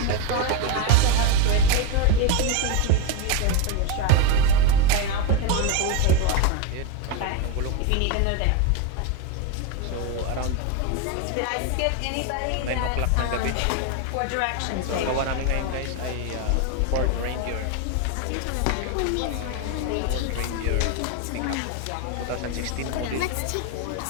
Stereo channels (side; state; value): both; different; correlation 0.02